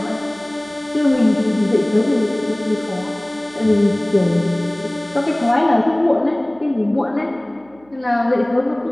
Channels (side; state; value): right; noise; hum, 30 dB below the sound